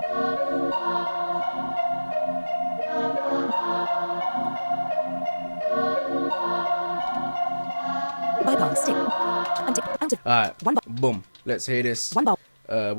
Bypass. Tick. Untick. Out of Alright, 1 bar. boom. Let's hear this. 1 bar.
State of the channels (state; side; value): inverted; both; correlation -1.00